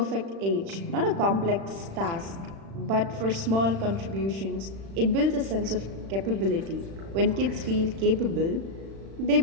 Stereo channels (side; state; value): left; late; 36 ms